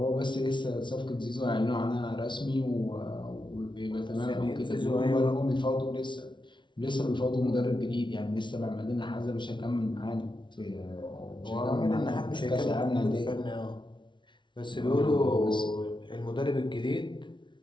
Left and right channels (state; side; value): late; right; 0.23 ms